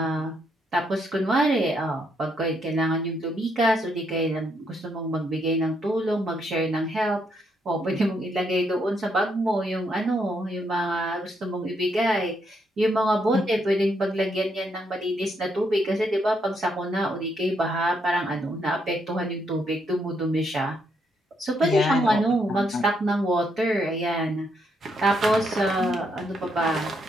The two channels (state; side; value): normal; both; correlation 0.76